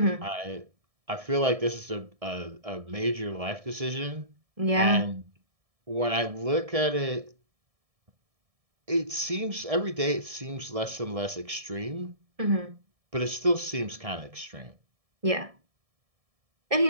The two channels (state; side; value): late; left; 1.7 ms